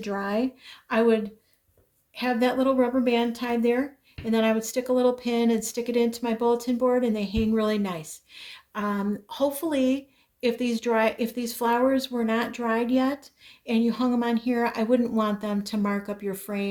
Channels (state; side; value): identical; both; correlation 1.00